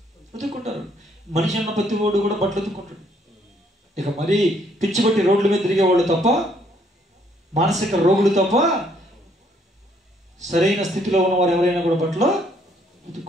ఉతుక్కుంటారు. మనిషి అన్న ప్రతి వాడు కూడా బట్టలు ఉతుక్కుంటాడు. ఇక మరీ పిచ్చి పట్టి రోడ్ల మీద తిరిగేవాళ్ళు తప్ప, మానసిక రోగులు తప్ప, సరైన స్థితిలో ఉన్నవారు ఎవరైనా కూడా బట్టలు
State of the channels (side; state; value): both; normal; correlation 0.67